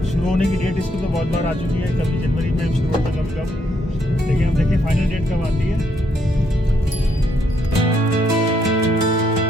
शुरू होने की डेट इसकी तो बहुत बार आ चुकी है, कभी जनवरी में शुरू होता है, कभी कब, लेकिन हम देखें फाइनल डेट कब आती है।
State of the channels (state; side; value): normal; both; correlation 0.74